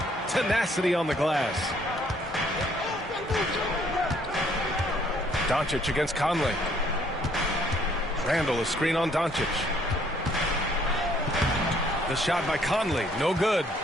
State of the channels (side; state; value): both; normal; correlation 0.64